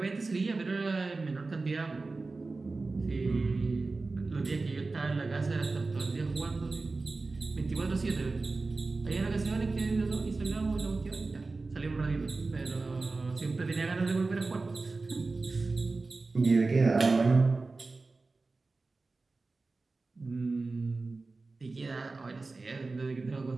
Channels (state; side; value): quieter; left; 3.6 dB